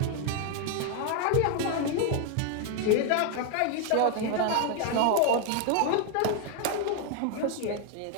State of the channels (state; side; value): different; both; correlation 0.00